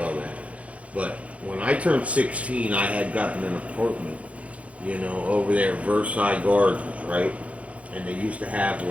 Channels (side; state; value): left; late; 0.064 ms